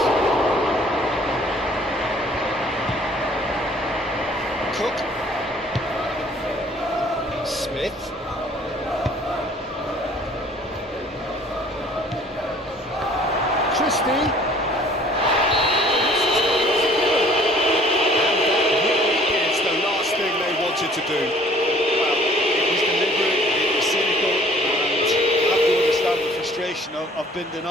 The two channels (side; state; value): both; normal; correlation 0.54